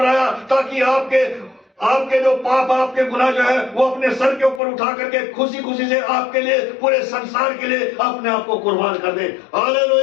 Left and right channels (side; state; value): right; drops out; at 4.6 s